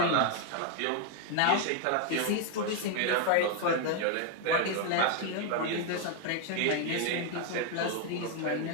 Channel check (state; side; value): different; both; correlation 0.00